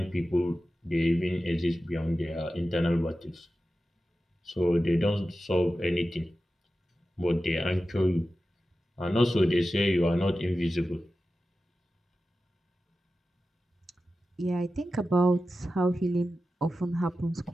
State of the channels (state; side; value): normal; both; correlation 0.93